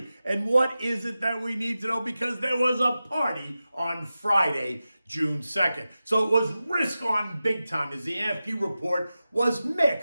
And what is it that we need to know? Because there was a party on Friday, June 2nd. So it was risk on big time as the AFP report was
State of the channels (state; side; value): inverted; both; correlation -0.94